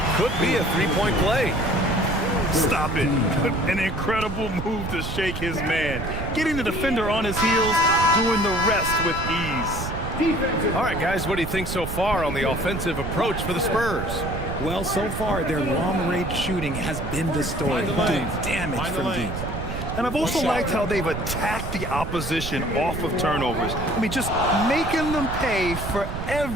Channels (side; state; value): right; noise; rumble, 6 dB below the sound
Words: could be a three-point play. Stop it. An incredible move to shake his man. Getting the defender on his heels, doing the rest with ease. All right, guys, what do you think so far on the offensive approach for the Spurs? Well, so far, their long-range shooting has been the story, doing damage from deep. And I've also liked how they've attacked the opposition off of turnovers. I mean, just making them pay for